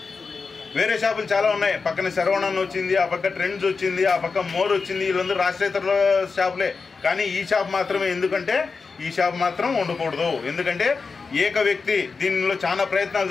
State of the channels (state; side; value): quieter; right; 4.7 dB